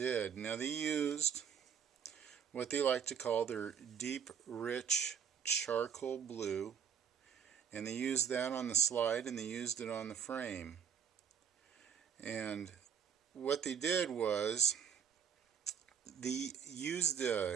Now they used what they like to call their deep, rich charcoal blue, and they used that on the slide and they used it on the frame. And what they did was they used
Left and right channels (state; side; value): quieter; left; 7.9 dB